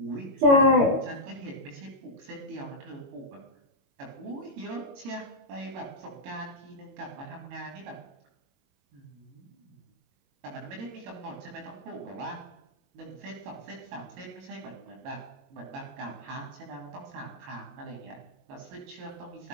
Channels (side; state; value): left; late; 22 ms